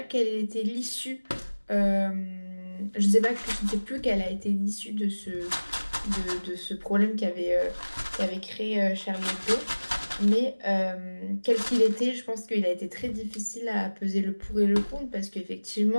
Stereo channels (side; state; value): both; inverted; correlation -1.00